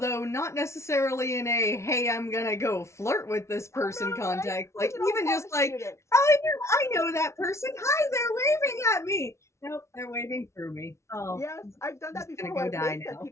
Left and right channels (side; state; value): right; late; 0.13 ms